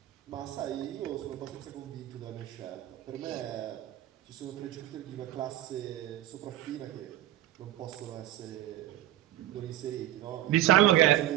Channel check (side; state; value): left; quieter; 14.0 dB